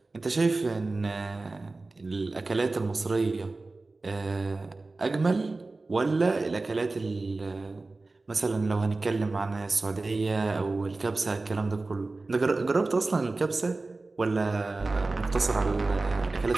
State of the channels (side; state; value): left; quieter; 3.4 dB